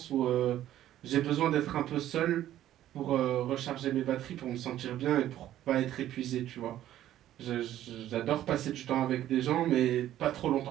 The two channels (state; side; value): quieter; left; 12.7 dB